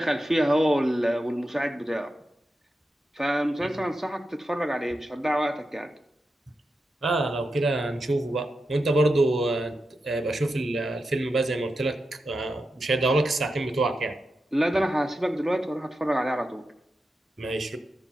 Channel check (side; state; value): both; normal; correlation 0.89